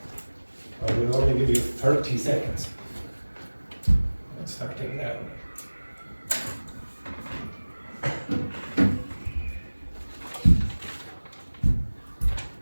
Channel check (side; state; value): both; inverted; correlation -1.00